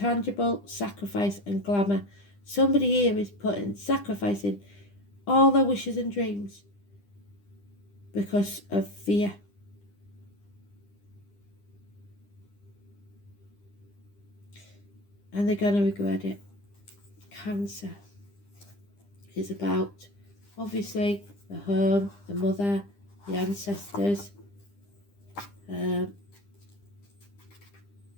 sacrifice, and glamour. Somebody here is sacrificing all their wishes and dreams because of fear. And they're going to regret it. Cancer is about, obviously, the home, the mother, the ancestors.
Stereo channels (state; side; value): late; right; 9.9 ms